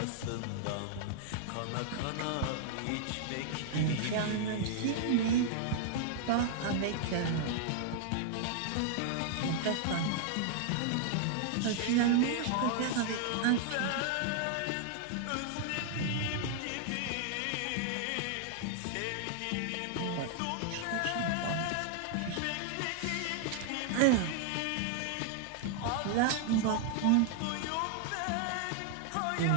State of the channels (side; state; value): both; different; correlation 0.00